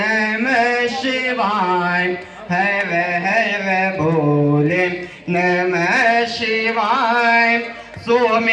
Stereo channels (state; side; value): identical; both; correlation 1.00